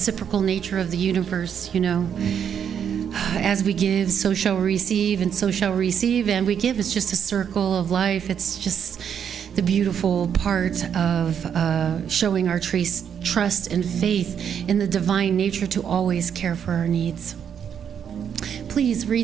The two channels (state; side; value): quieter; left; 8.1 dB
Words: nature of the universe, you know. As we give, so shall we receive, and so shall we receive, and we give. It's just a circle of life. It's just the beautiful part of showing our trust and faith in the divine nature to always care for our needs. Please